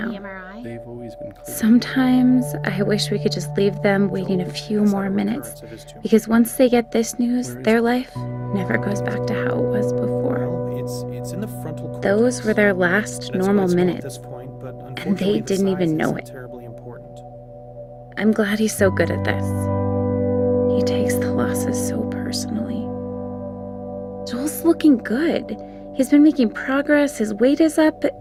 MRI? They've always been clear. Sometimes I wish we could just leave them waiting a few more minutes, because once they get this news, their life never goes back to how it was before. Well, it's in the frontal cortex. Those were their last And it's normal quite small at minutes. this point, but they unfortunately, the didn't even size know isn't it. terribly important. I'm glad he's so good at this. He takes the losses so personally. Joel's looking good. He's been making progress, his weight is up.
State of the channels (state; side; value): identical; both; correlation 1.00